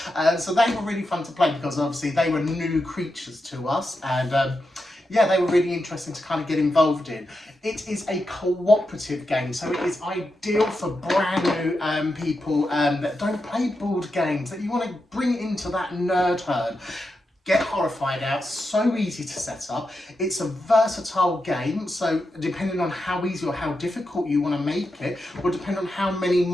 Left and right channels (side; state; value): both; normal; correlation 0.88